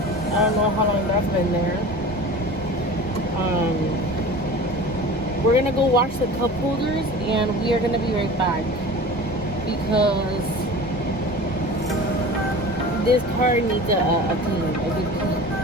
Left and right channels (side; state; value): both; normal; correlation 0.37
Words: I don't know how long that's been there. We're gonna go wash the cup holders and we are gonna be right back because this car needs a clean, a good clean.